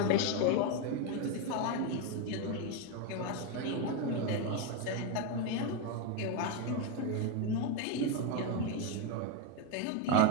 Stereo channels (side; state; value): both; different; correlation 0.02